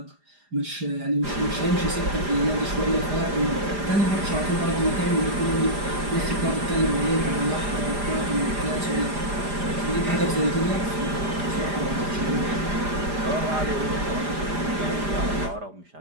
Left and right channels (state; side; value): late; left; 4.9 ms